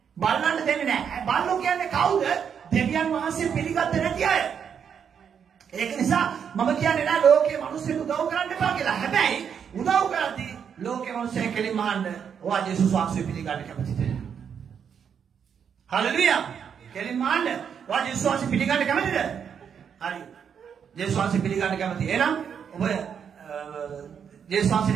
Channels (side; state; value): left; quieter; 7.5 dB